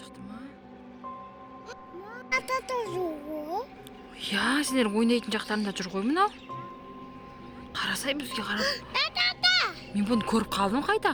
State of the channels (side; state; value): both; identical; correlation 1.00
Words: ма? Я, сендер ойнайтын жақтарында жүр ғой мынау. Қарасай бізге қарап. Мен бұны көріп қалдым